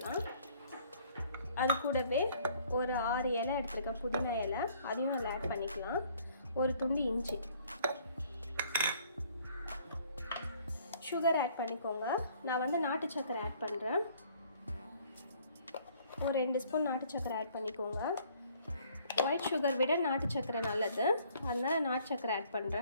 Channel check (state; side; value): inverted; both; correlation -0.60